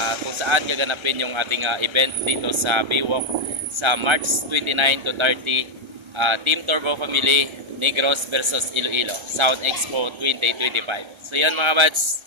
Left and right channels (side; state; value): left; late; 1.3 ms